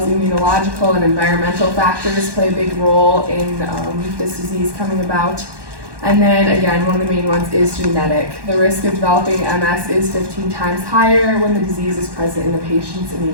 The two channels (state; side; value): late; left; 1.1 ms